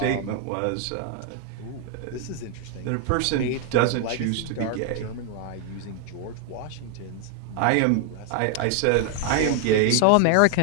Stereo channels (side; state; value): both; different; correlation 0.00